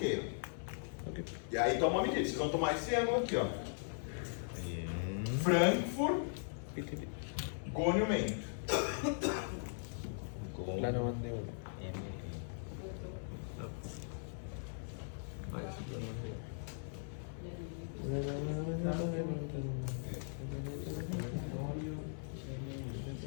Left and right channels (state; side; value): silent; right; 52 dB below the other